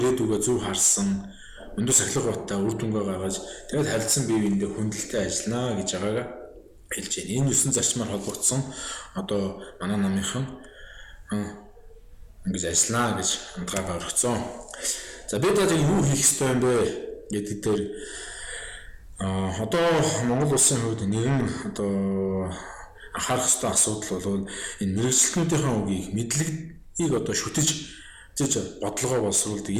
зөв харсан, өндөр сахилга баттай үр дүнгээ гаргаж тэгээд харилцан бие биендээ хүндэлтэй ажиллана гэж байгаагаа хэлж байна. Энэ 9 зарчмаар холбогдсон одоо манай намынхан ингэж ажиллана гэж хандгаагаа өргөцсөн. За бид одоо юу хийх ёстой юм бэ гэдэг дээр одоо Монгол улсын хувьд нэгэн одоо анхаарах ёстой асуудал бол энэ мэргэжилтнүүдийн үгийг мэдлэгийг одоо шүтэж бодлогоо боловсруулдаг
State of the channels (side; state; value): both; identical; correlation 1.00